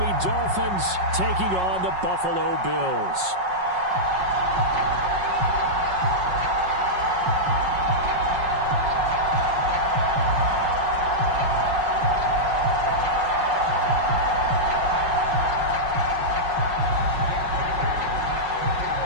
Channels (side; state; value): left; late; 5.5 ms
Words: Dolphins taking on the Buffalo Bills.